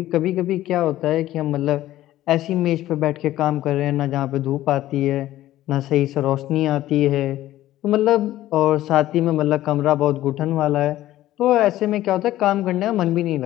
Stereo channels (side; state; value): right; quieter; 14.5 dB